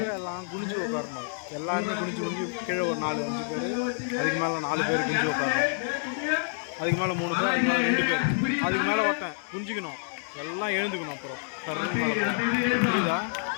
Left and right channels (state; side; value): silent; right; digital silence